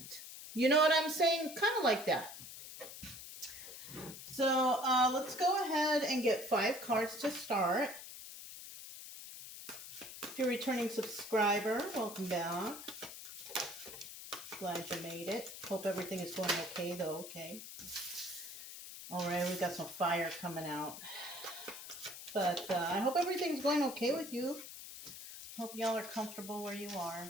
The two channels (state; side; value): noise; left; hiss, 12 dB below the sound